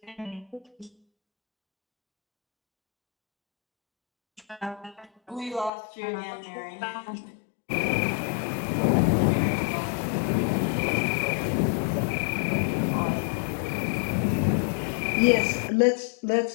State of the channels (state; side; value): drops out; right; at 5.7 s